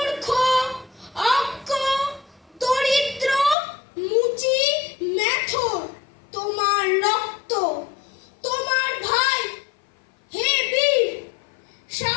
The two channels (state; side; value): drops out; right; at 3.6 s